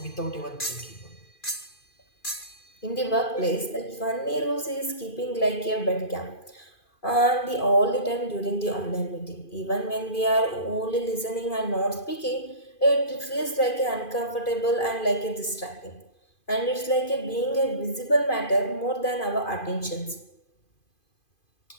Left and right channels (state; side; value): late; right; 2.5 ms